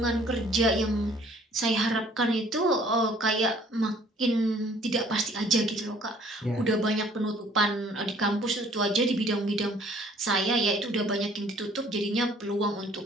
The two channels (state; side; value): normal; both; correlation 0.57